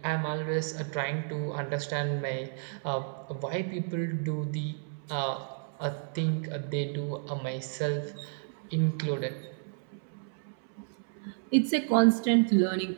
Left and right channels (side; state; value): left; silent; 57 dB below the other